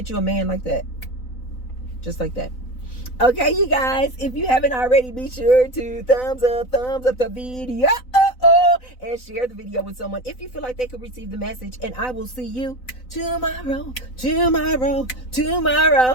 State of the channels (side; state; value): right; late; 4.0 ms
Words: you a man like that. Just like that. Okay, you guys, if you haven't already, be sure to thumbs up the video and share the video with someone if you feel like they could receive the message. And I will see you tomorrow.